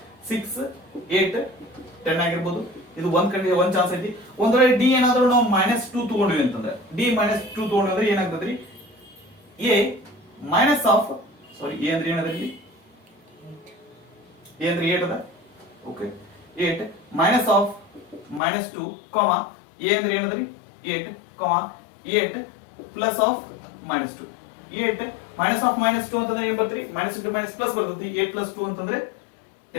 6 8 10 ಆಗಿರ್ಬೋದು. ಇದು ಒಂದ್ ಚಾನ್ಸ್ ಐತಿ. ಒಂದ್ ವೇಳೆ ಡಿ ಏನಾದ್ರೂ ನಾವು ಮೈನಸ್ 2 ತಗೊಂಡ್ವಿ ಅಂತಂದ್ರೆ ಡಿ ಮೈನಸ್ 2 ತಗೊಂಡ್ರೆ ಏನಾಗ್ತದ್ರಿ A minus of sorry A ಅಂದ್ರೆ ಏನದ್ರಿ ಎ ಅಂದ್ರೆ 8 ಅದ. Okay 8 minus of minus 2 comma A ಅಂದ್ರೆ ಏನದ್ರಿ 8 comma 8 plus of minus 2. 8 minus of minus 2 ಅಂತಂದ್ರೆ ಏನ್ ಬರ್ತರಿ ಮೈನಸ್ ಇಂಟು ಮೈನಸ್ ಪ್ಲಸ್ ಬರ್ತೈತಿ. 8 ಪ್ಲಸ್ 2 ಅಂತಂದ್ರೆ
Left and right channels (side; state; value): right; drops out; at 18.4 s